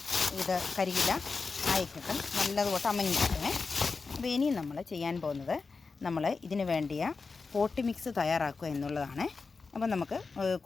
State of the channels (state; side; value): quieter; right; 4.5 dB